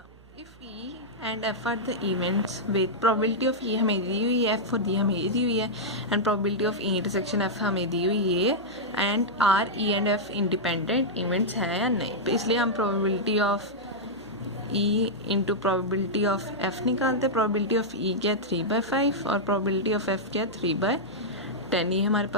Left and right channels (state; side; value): noise; right; hum, 24 dB below the sound